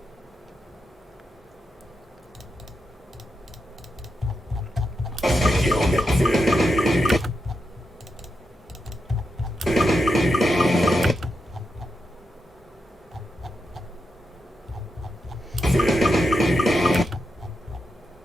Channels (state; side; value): normal; both; correlation 0.86